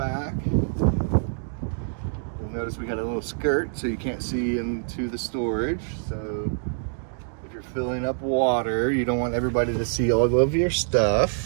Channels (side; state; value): left; silent; digital silence